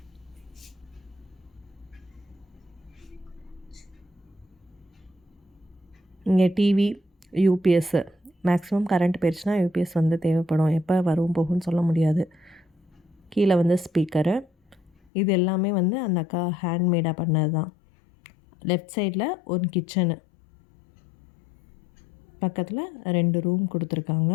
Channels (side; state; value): right; drops out; at 14.9 s